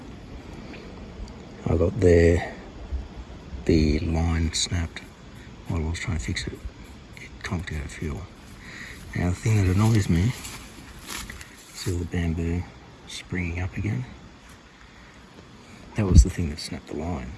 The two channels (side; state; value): both; identical; correlation 1.00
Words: I got there, the line snapped while I was trying to fix it. It conked out of fuel. Now the thing that annoys me, see all the bamboo springing up again? That was the thing that snapped the line